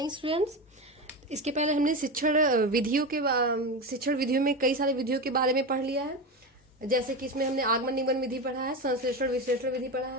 students. इसके पहले हमने शिक्षण विधियों में कई सारे विधियों के बारे में पढ़ लिया है। जैसे कि इसमें हमने आगमन निगमन विधि पढ़ा है, संश्लेषण विश्लेषण विधि पढ़ा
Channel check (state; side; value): normal; both; correlation 0.20